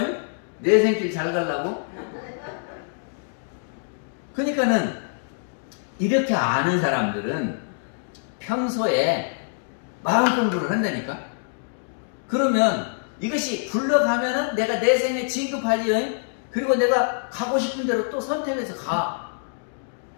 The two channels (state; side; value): silent; right; digital silence